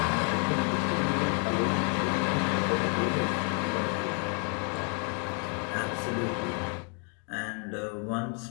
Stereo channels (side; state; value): right; quieter; 38.6 dB